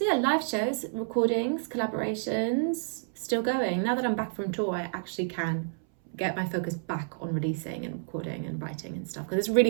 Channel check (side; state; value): left; silent; 58 dB below the other